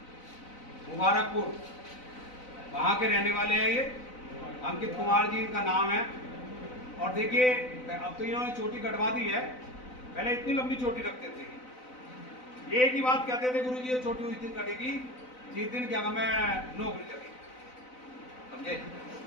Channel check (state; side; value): late; right; 4.0 ms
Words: मुबारकपुर, वहाँ के रहने वाले हैं ये। अंकित कुमार जी इनका नाम है। और देखिए अब तो इन्होंने चोटी कटवा दी है, पहले इतनी लंबी चोटी रखते थे। ये एक ही बात कहते थे, गुरु जी ये चोटी उस दिन कटेगी जिस दिन क्या मैं नौकरी लगी, समझे।